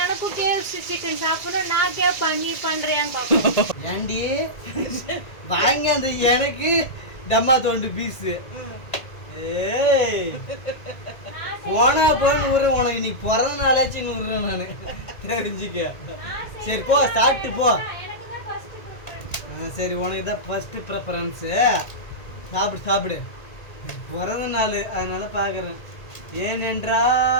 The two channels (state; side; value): late; right; 1.9 ms